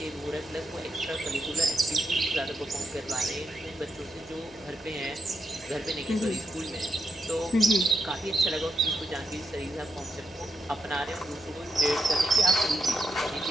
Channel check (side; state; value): right; noise; hum, 28 dB below the sound